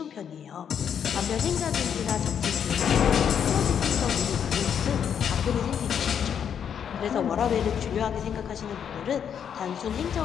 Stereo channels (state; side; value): quieter; right; 8.2 dB